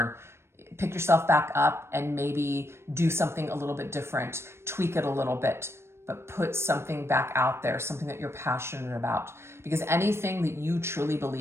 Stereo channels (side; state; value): left; late; 0.12 ms